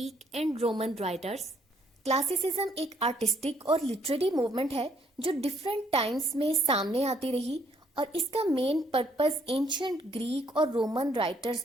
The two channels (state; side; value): normal; both; correlation 0.68